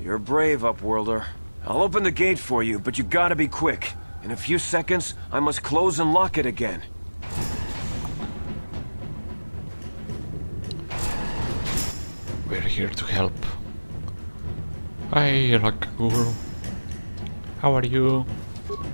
You're brave, Upworlder. I'll open the gate for you, but you gotta be quick. In a few seconds, I must close and lock it again. We're here to help. Hi, Rakaguru. How are you?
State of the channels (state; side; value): inverted; both; correlation -1.00